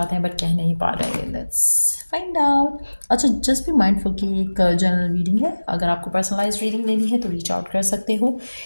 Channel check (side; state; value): both; inverted; correlation -1.00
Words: हैं बट कह नहीं पा रहे। Let's find out. अच्छा, जस्ट बी माइंडफुल कि एक जनरल रीडिंग है। अगर आपको पर्सनलाइज रीडिंग लेनी है तो रीच आउट कर सकते हो।